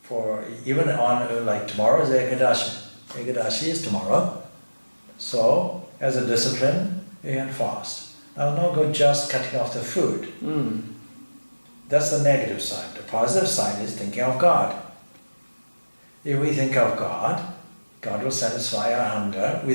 for, even on, like tomorrow is Ekadashi. Ekadashi is tomorrow. So, as a discipline, you can fast. Now, no good just cutting off the food. That's the negative side. The positive side is thinking of God. If we think of God, God will satisfy our hunger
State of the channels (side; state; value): both; inverted; correlation -1.00